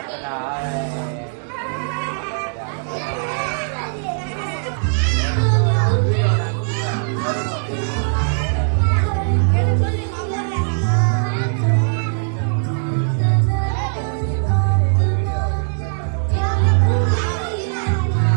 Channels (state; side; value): silent; left; digital silence